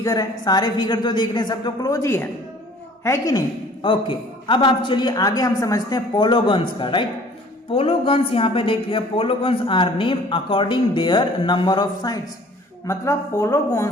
है, सारे फिगर जो देख रहे हैं सब तो क्लोज ही है कि नहीं? ओके, अब आप चलिए आगे हम समझते हैं पोलोगन्स का। राइट, पोलोगन्स यहाँ पे देखिए, polygons are name according their number of sides. मतलब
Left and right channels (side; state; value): both; normal; correlation 0.52